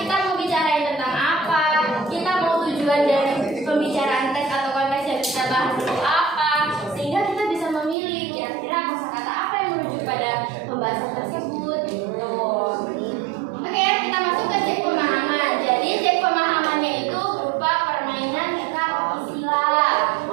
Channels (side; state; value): left; drops out; at 8.0 s